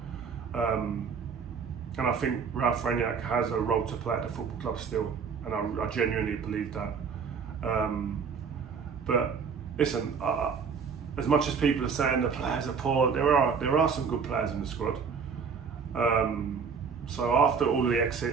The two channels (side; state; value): left; quieter; 6.0 dB